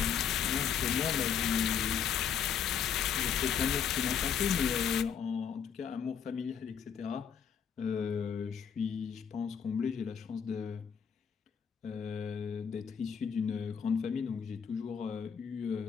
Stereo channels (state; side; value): quieter; right; 7.7 dB